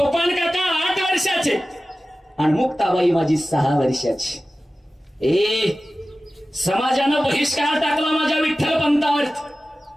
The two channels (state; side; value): normal; both; correlation 0.96